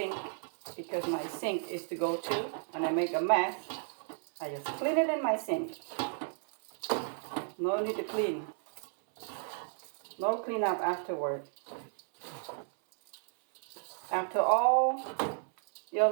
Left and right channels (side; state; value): left; silent; 56 dB below the other